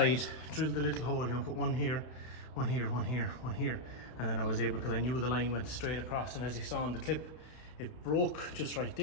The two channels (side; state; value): right; late; 32 ms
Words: drilled a little hole, you know, put one here, one here, one here, one here. And then I was able, because I knew the line went straight across, and as you saw in the clip, it broke just right